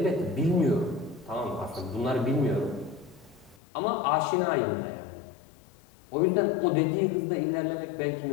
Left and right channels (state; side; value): drops out; right; at 3.6 s